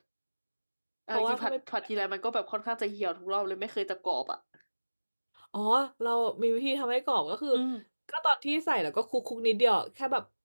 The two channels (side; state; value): both; inverted; correlation -1.00